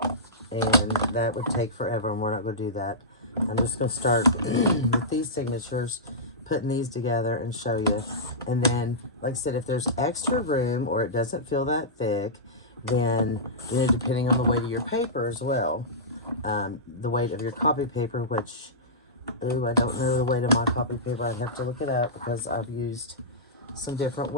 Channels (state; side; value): normal; both; correlation -0.17